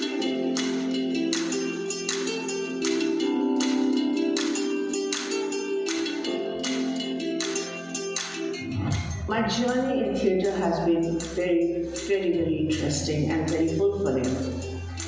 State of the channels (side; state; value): both; identical; correlation 1.00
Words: My journey in theatre has been very interesting and very fulfilling.